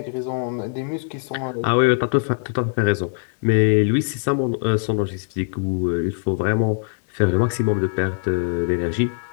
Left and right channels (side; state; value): right; silent; digital silence